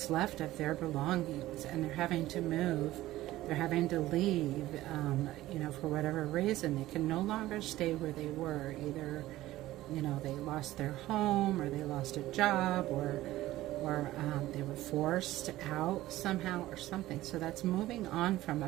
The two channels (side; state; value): left; quieter; 15.9 dB